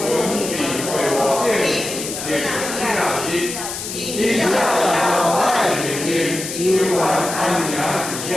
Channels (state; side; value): noise; left; hiss, 7 dB below the sound